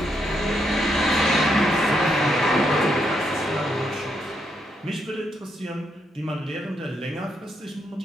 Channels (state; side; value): normal; both; correlation 0.78